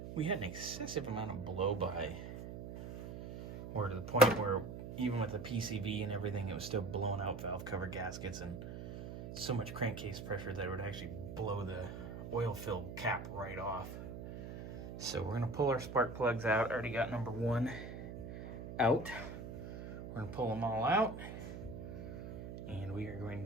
we had an excessive amount of blow-by, or to the point where even with the PCV and everything, it was still blowing out valve cover gaskets and so much crankcase pressure that it would actually blow the oil-filled cap right off. So we're gonna pull our spark plugs out. I already got number 1 out. We're gonna pull them all out, and we are going to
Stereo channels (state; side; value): noise; right; hum, 9 dB below the sound